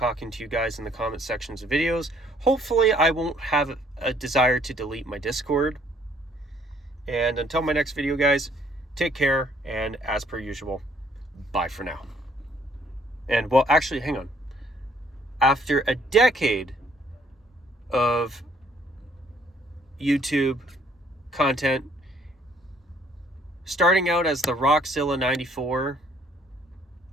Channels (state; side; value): normal; both; correlation 0.63